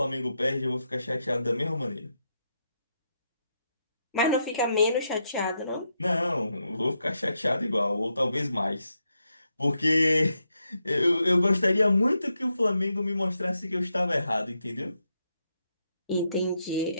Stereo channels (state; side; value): inverted; both; correlation -0.82